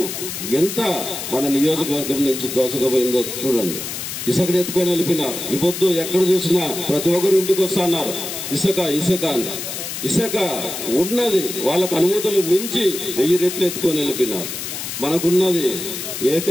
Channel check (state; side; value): noise; left; hiss, 6 dB below the sound